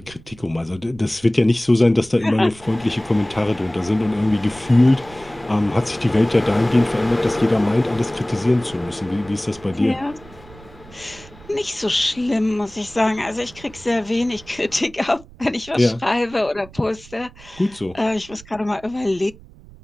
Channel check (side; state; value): right; noise; rumble, 22 dB below the sound